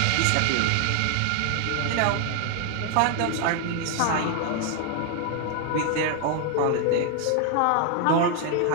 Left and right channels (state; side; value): different; both; correlation 0.00